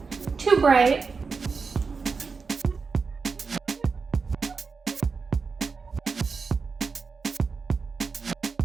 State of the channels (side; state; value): left; quieter; 4.9 dB